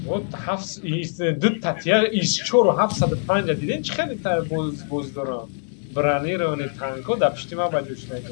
Вот حفص ایست دو تاتیار ایست چور و 750 دیدین چه خیلی تر بوز دارم برانی رو نی تانکو دا پشتی ما باجوش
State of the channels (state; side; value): silent; right; digital silence